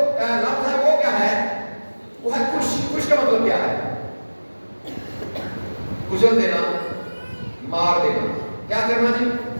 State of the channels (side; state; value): both; inverted; correlation -1.00